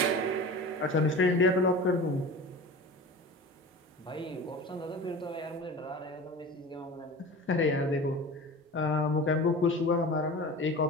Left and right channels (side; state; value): both; normal; correlation 0.35